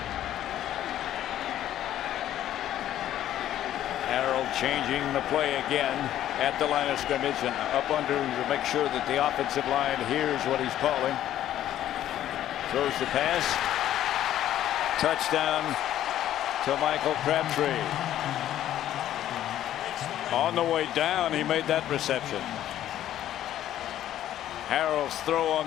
Harrell changing the play again at the line of scrimmage and up under to make sure that the offensive line hears what he's calling. Throws the pass. Touchdown to Michael Crabtree. On the way down, he made that reception. Harrell's throw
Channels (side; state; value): right; quieter; 12.1 dB